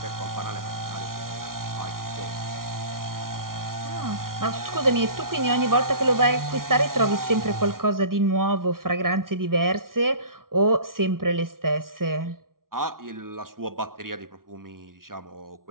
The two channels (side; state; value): left; late; 0.92 ms